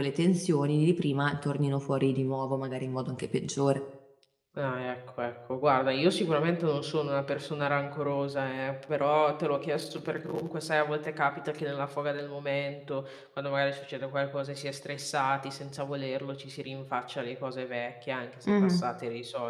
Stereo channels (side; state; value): both; identical; correlation 1.00